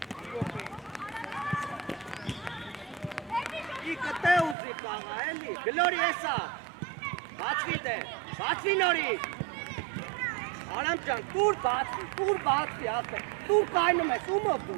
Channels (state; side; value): drops out; left; at 4.5 s